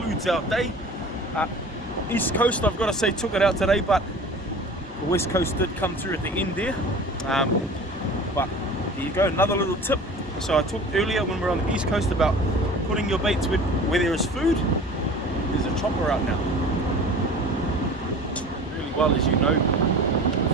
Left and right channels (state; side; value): normal; both; correlation 0.40